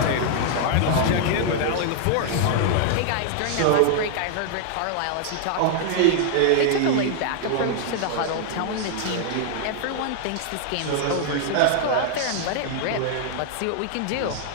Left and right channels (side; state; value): both; different; correlation -0.01